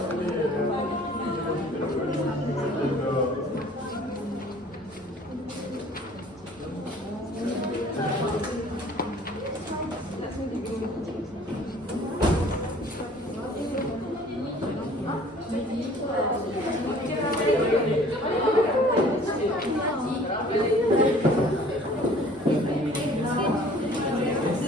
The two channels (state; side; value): normal; both; correlation 0.52